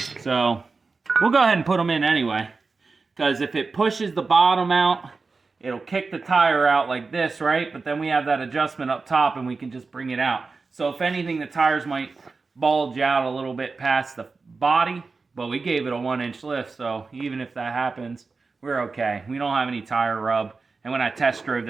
So we'll go ahead and put them in anyway, because if it pushes the bottom out, it'll kick the tire out like this, right? But then we have that adjustment up top, and we can just bring it out. So if anything, the tires might bulge out a little bit past the body, but we gave it a 1-inch lift, so even if that happens, we're okay. We don't have any tire rub, and when I test drove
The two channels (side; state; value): left; quieter; 4.2 dB